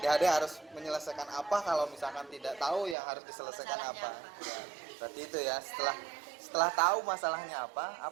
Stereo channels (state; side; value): drops out; left; at 3.0 s